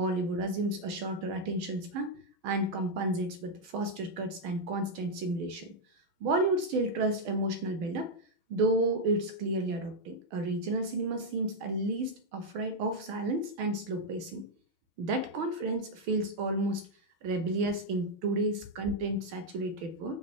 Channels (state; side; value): late; left; 6.3 ms